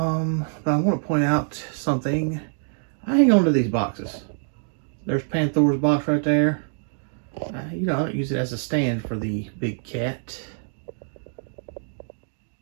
want to point out something. I hang on to these boxes. There's Panther's box right there. You know, I don't use it as a stand for the big cat.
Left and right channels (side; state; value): left; silent; 62 dB below the other